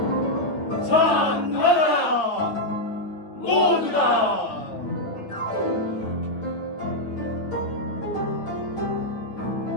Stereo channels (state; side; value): late; right; 9.3 ms